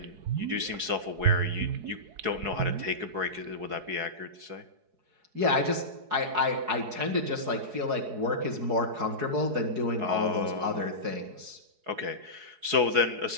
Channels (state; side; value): late; left; 4.7 ms